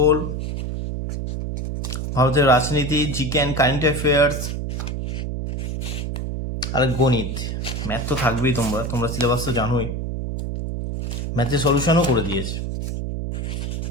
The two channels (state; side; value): noise; right; hum, 3 dB below the sound